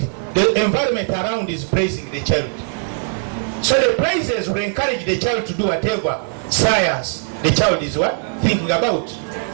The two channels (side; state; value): left; silent; 57 dB below the other